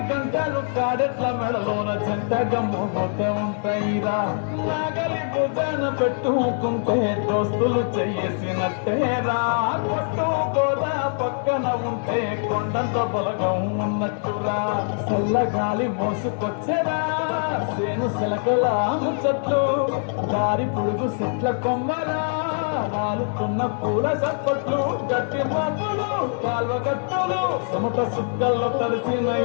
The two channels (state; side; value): silent; right; digital silence